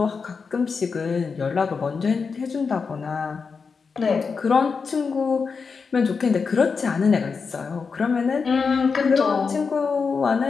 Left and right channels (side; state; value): right; quieter; 5.2 dB